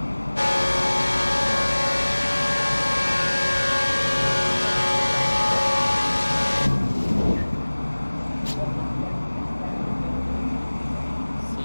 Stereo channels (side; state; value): both; inverted; correlation -1.00